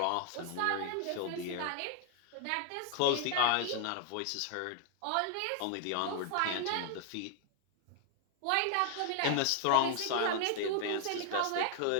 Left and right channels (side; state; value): both; different; correlation 0.00